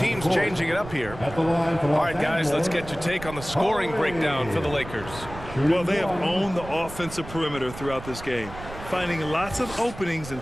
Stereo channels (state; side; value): noise; right; rumble, 13 dB below the sound